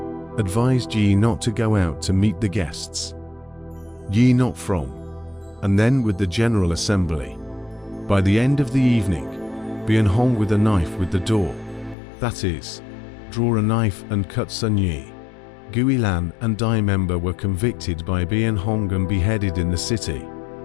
Advised Yi not to go out to meet the guests. Yi not from. And then with the general assembly. By the end of the evening, Bian Hong with a knife with the door. That is, draw a knife and cut Sun Yi. Guilan and Dai member were convicted by Bian Hong and beheaded in the city.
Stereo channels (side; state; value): right; drops out; at 12.0 s